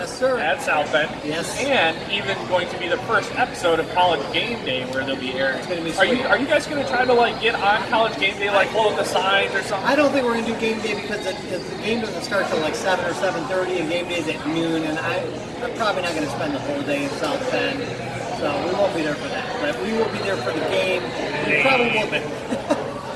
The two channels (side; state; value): both; identical; correlation 1.00